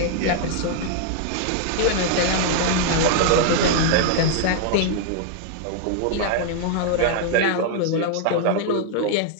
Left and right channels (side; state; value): both; different; correlation 0.00